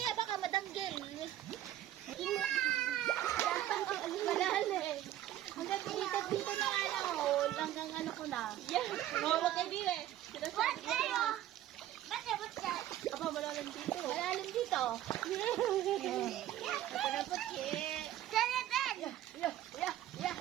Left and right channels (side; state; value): left; quieter; 12.9 dB